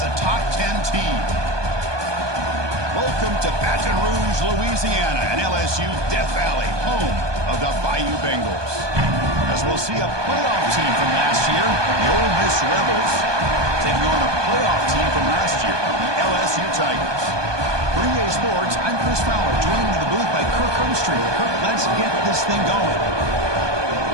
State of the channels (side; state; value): left; late; 1.2 ms